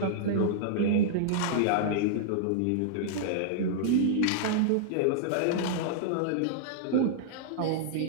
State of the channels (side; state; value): both; different; correlation -0.01